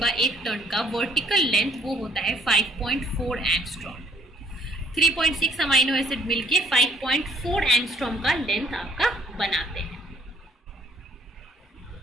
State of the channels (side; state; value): both; normal; correlation 0.63